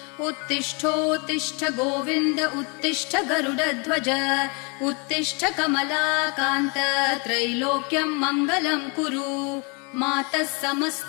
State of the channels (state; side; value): quieter; right; 32.7 dB